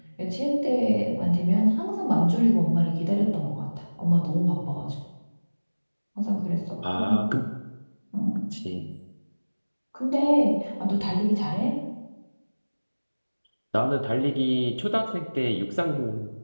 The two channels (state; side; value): inverted; both; correlation -1.00